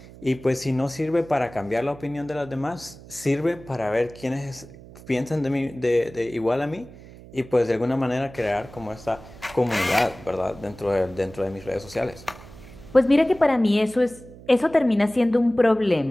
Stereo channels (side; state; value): right; noise; hum, 19 dB below the sound